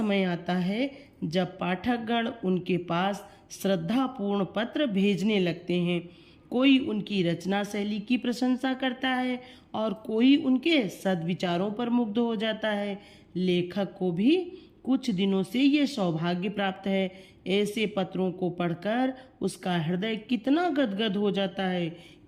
आता है जब पाठकगण उनके पास श्रद्धापूर्ण पत्र भेजने लगते हैं। कोई उनकी रचना शैली की प्रशंसा करता है और कोई उनके सद्विचारों पर मुग्ध हो जाता है। लेखक को भी कुछ दिनों से ये सौभाग्य प्राप्त है। ऐसे पत्रों को पढ़कर उसका हृदय कितना गदगद हो जाता है,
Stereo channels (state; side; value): identical; both; correlation 1.00